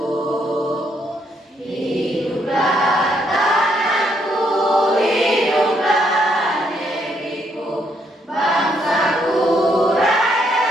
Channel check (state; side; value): normal; both; correlation 0.73